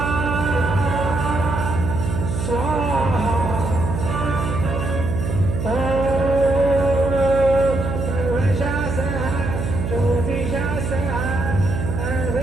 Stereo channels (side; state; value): right; noise; hum, 3 dB below the sound